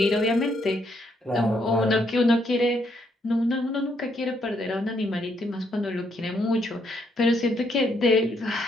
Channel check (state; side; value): normal; both; correlation 0.73